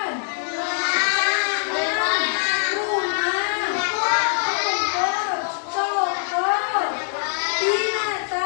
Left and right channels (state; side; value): silent; right; digital silence